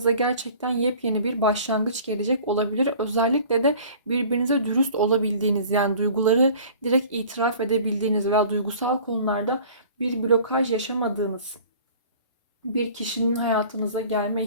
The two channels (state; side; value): inverted; both; correlation -0.47